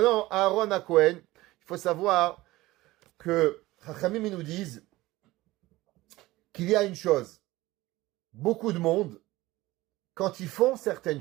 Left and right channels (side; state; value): left; quieter; 18.5 dB